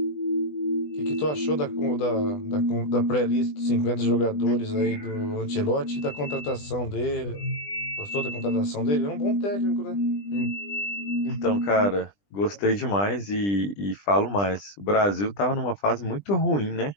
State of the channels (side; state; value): right; late; 20 ms